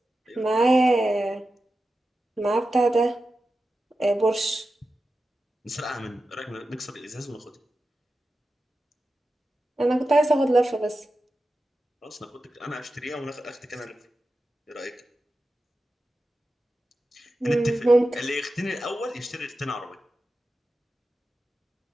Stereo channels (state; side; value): normal; both; correlation 0.92